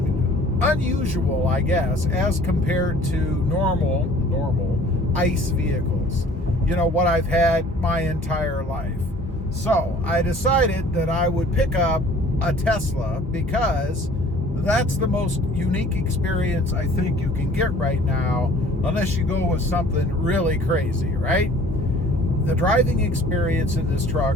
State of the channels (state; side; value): normal; both; correlation 0.51